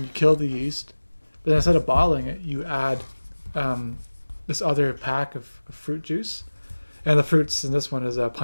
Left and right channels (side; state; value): both; inverted; correlation -1.00